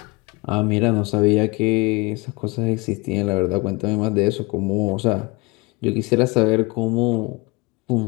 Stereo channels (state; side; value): quieter; right; 25.3 dB